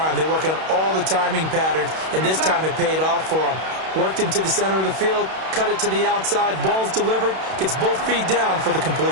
They work on all the timing patterns, and this time it paid off for them. Worked him to the center of the field, cut it to the outside, ball's delivered, gets both feet down for the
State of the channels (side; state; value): left; late; 32 ms